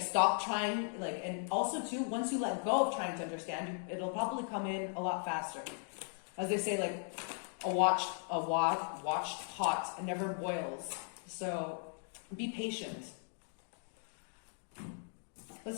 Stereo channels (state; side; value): silent; right; 53 dB below the other